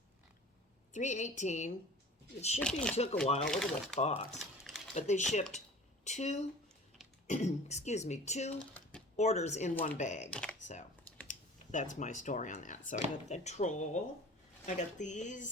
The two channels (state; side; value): normal; both; correlation 0.42